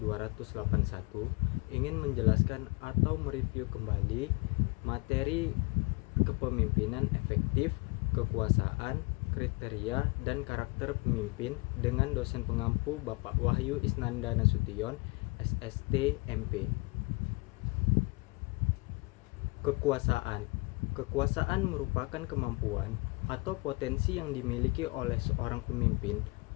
Ingin menjelaskan atau mereview kembali materi kepemimpinan efektif, kekuasaan, kriteria, dan karakter pemimpin dengan dosen pengampu Bapak Wahyu Isnanda Nasution, SST, MP. Kekuasaan. Kekuasaan merupakan kemampuan atau potensi yang dimiliki oleh seorang pemimpin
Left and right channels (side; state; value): right; quieter; 27.1 dB